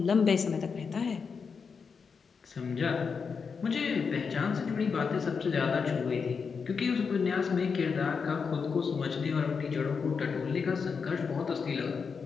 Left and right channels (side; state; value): right; quieter; 5.6 dB